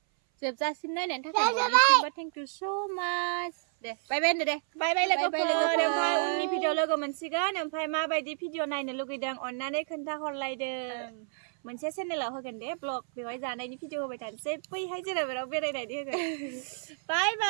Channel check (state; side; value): silent; left; 58 dB below the other